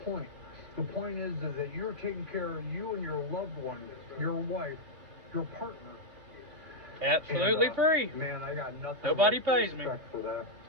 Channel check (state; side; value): late; left; 3.1 ms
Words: point. The point is that you're taking care of you and your loved one, your wife, your partner. Absolutely And, free. Man, I got nothing. Nobody but pays me. respect for that.